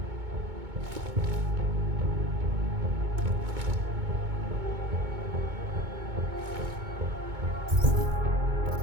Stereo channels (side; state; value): left; late; 2.2 ms